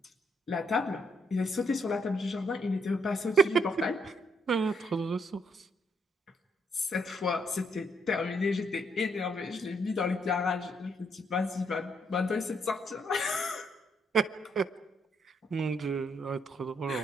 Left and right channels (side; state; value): both; normal; correlation 0.73